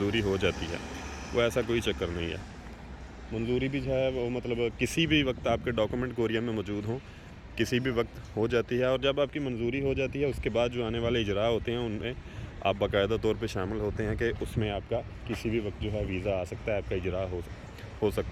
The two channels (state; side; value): identical; both; correlation 1.00